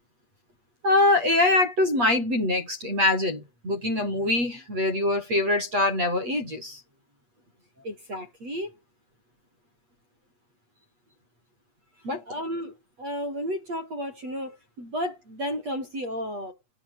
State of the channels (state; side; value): late; left; 8.3 ms